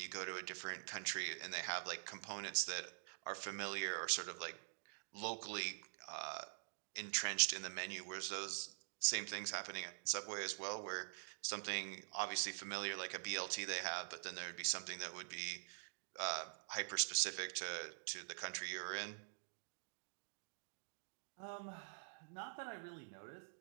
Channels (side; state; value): left; silent; digital silence